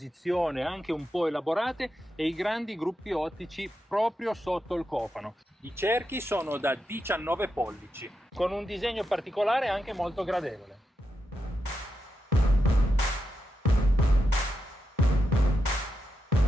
anche un po' elaborate e i grandi gruppi ottici proprio sotto il cofano. I cerchi sono da 19 pollici, con un disegno particolare anche molto gradevole.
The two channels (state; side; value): normal; both; correlation 0.86